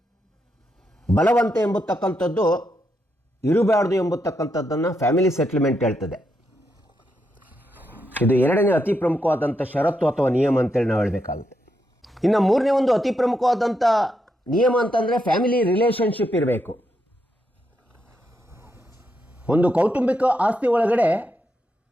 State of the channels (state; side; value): normal; both; correlation 0.81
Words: ಬಲವಂತ ಎಂಬತಕ್ಕಂಥದ್ದು ಇರಬಾರ್ದು ಎಂಬತಕ್ಕಂಥದ್ದನ್ನು ಫ್ಯಾಮಿಲಿ ಸೆಟಲ್ಮೆಂಟ್ ಹೇಳ್ತದೆ. ಇದು ಎರಡನೇ ಅತಿ ಪ್ರಮುಖವಾದಂಥ ಷರತ್ತು ಅಥವಾ ನಿಯಮ ಅಂತೇಳಿ ನಾವು ಹೇಳಬೇಕಾಗುತ್ತೆ. ಇನ್ನು ಮೂರನೇ ಒಂದು ಅತಿ ಪ್ರಮುಖವಾದಂಥ ನಿಯಮ ಅಂತಂದರೆ ಫ್ಯಾಮಿಲಿ ರಿಲೇಷನ್ಶಿಪ್ ಇರಬೇಕು. ಒಂದು ಕೌಟುಂಬಿಕ ಆಸ್ತಿ ಒಳಗಡೆ